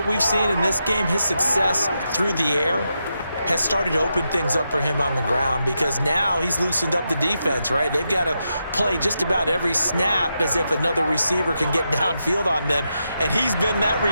we've seen in this game, his success through the air has started to open things up for him on the ground because now he's loosened up the defense, right? They've got to play just about every snap as if another receiver can get downfield on them, and he's been that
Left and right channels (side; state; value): both; inverted; correlation -0.85